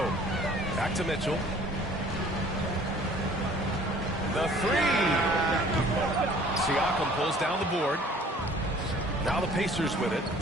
Back to Mitchell. The 3. Siakam pulls down the board. Now the Pacers with it.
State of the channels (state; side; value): normal; both; correlation 0.53